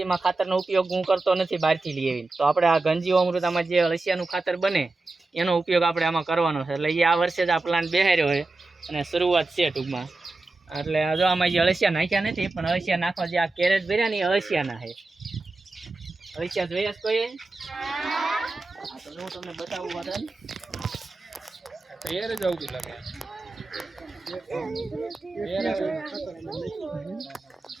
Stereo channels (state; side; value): quieter; left; 3.3 dB